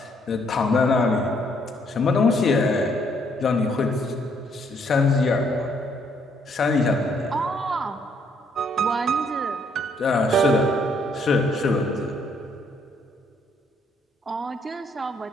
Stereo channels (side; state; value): both; normal; correlation 0.69